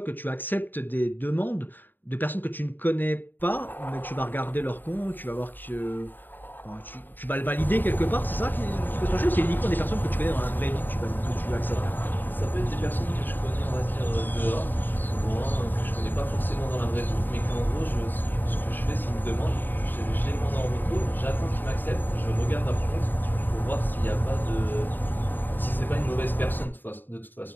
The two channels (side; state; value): right; late; 0.091 ms